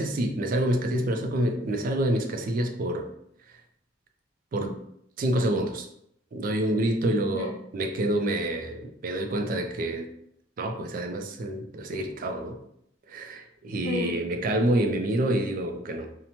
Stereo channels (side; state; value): both; normal; correlation 0.55